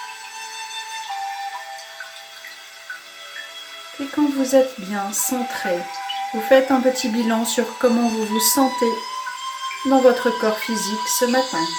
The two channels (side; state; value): both; identical; correlation 1.00